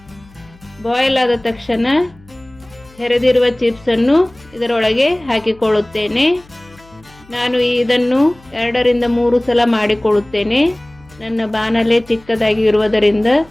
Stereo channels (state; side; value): noise; left; hum, 26 dB below the sound